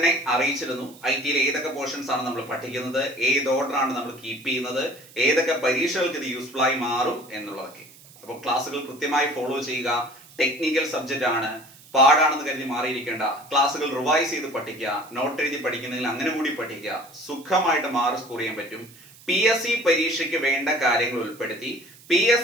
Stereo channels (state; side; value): noise; right; hiss, 23 dB below the sound